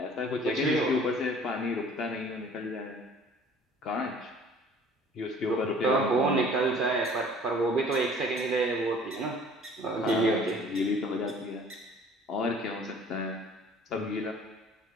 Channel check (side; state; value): both; normal; correlation 0.51